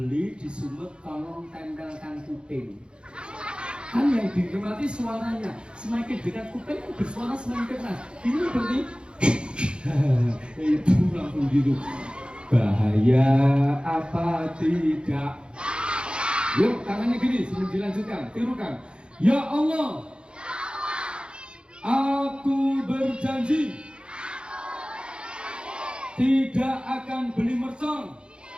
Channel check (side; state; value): left; late; 0.054 ms